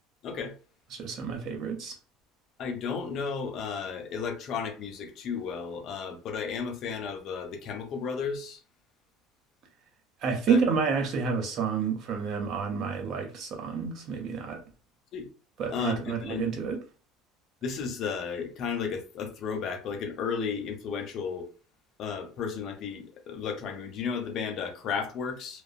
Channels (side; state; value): both; normal; correlation 0.41